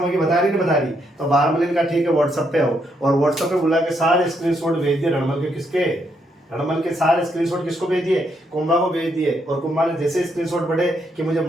बता रही नहीं बता रही? तो बारमली ने कहा ठीक है व्हाट्सएप पे हो। और व्हाट्सएप पे बुला के सारे स्क्रीनशॉट भेज दिए रणमल के। किसके? रणमल के सारे स्क्रीनशॉट किसको भेज दिए? कुंभा को भेज दिए। और कुंभा ने जैसे स्क्रीनशॉट बढ़े कि मुझे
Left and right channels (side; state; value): both; normal; correlation 0.76